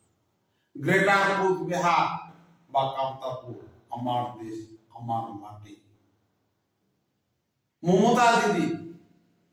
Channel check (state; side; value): identical; both; correlation 1.00